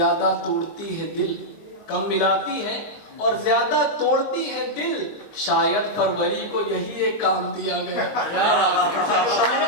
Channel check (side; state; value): right; late; 24 ms